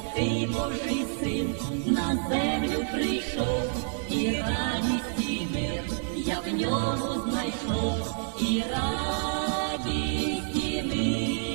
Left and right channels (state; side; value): silent; left; digital silence